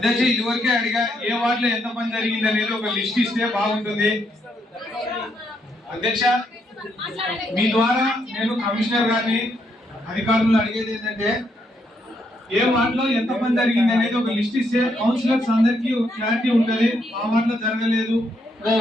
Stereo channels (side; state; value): both; normal; correlation 0.76